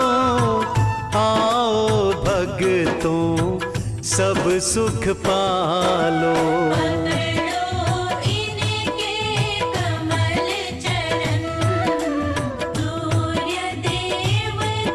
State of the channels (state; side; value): identical; both; correlation 1.00